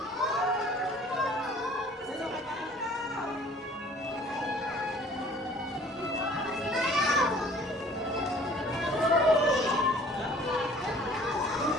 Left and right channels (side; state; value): both; normal; correlation 0.52